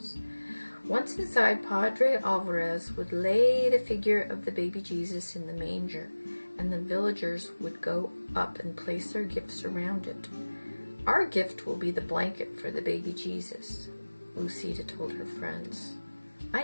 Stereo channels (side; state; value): both; inverted; correlation -1.00